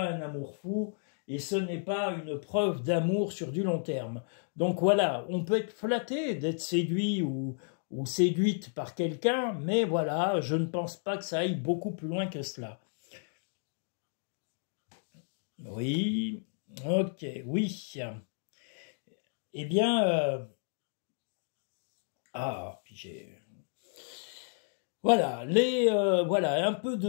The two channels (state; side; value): silent; right; digital silence